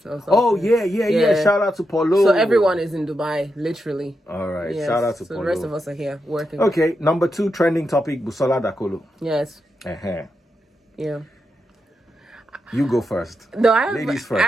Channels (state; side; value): normal; both; correlation 0.86